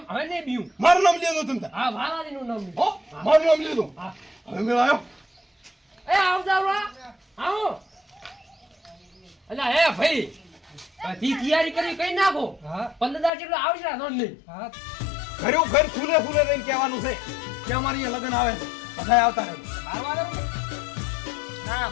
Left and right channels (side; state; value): right; drops out; at 13.3 s